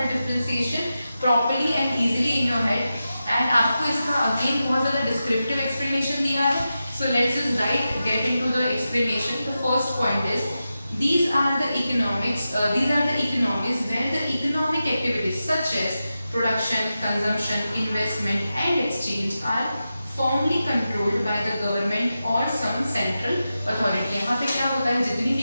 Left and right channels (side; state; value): both; inverted; correlation -0.91